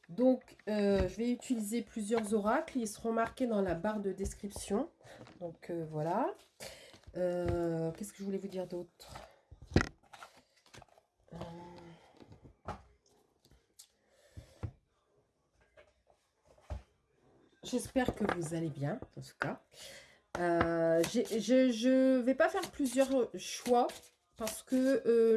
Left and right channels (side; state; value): both; identical; correlation 1.00